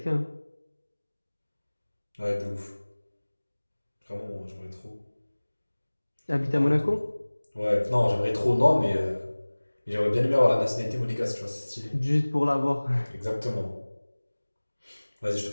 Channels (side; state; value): both; inverted; correlation -1.00